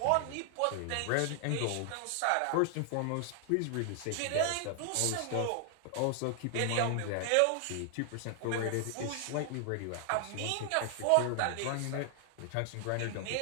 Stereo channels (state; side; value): different; both; correlation 0.00